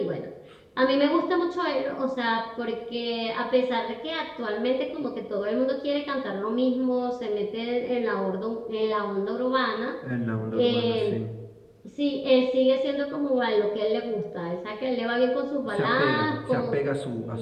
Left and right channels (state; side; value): identical; both; correlation 1.00